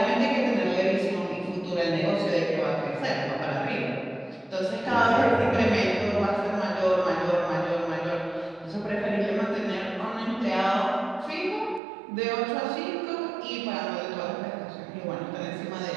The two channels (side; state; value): left; drops out; at 11.8 s